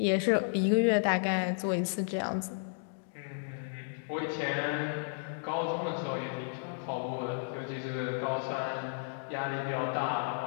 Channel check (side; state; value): right; silent; digital silence